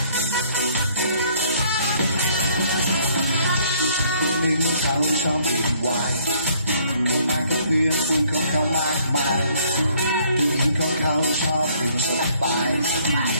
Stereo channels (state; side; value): inverted; both; correlation -0.62